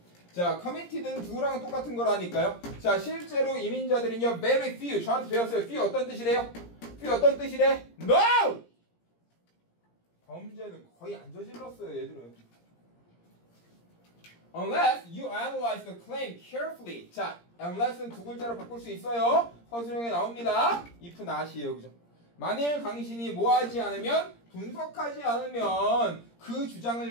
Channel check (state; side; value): late; right; 17 ms